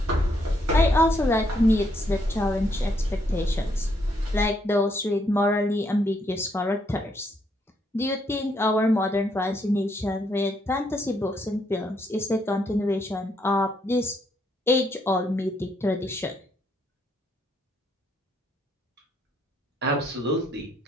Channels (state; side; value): normal; both; correlation 0.74